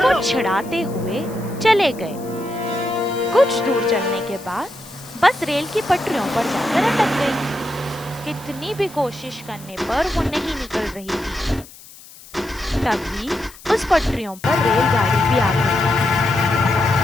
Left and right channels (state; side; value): noise; left; hiss, 20 dB below the sound